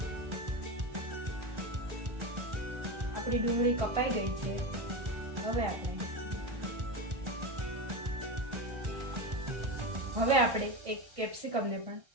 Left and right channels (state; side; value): late; left; 1.4 ms